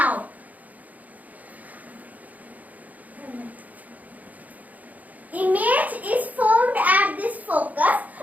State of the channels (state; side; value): late; left; 0.077 ms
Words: image is formed at this focus